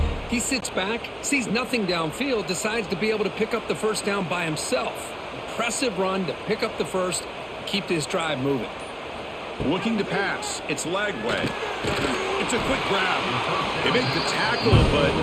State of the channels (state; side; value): identical; both; correlation 1.00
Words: he sits back, sees nothing downfield, decides to be able to pick up the first down by himself. Impressive run to pick up the first, keep this drive moving. Looking to pass. It's Lagway. It's a quick grab. They make the tackle, but